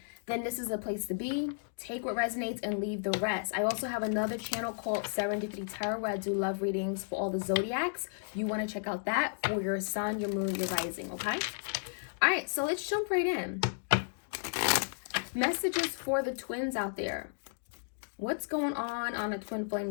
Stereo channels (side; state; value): right; silent; digital silence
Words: then this is a place to be. Take what resonates and leave the rest. I also have another channel called Serendipity Tarot where I do love readings for all the zodiacs. You want to check out that for your sun, your moon, your rising, okay? All right, so let's jump right in. Messages for the twins out there. What's going on a twin